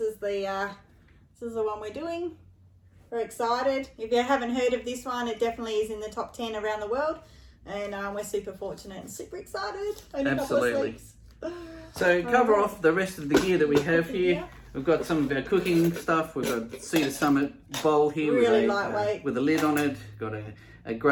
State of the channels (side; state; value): both; identical; correlation 1.00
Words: the one we're doing. Very excited. If you haven't heard of this one, it definitely is in the top 10 around the world, and we're super fortunate and super excited. Absolutely. So cover off the rest of the gear that we have here. We've got some of our cooking stuff. We've got Cedar Summit bowl here really lightweight with a lid on it. Got a